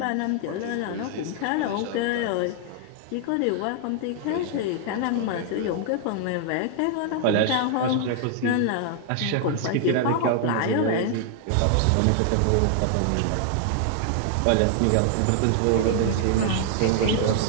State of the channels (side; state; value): both; different; correlation 0.00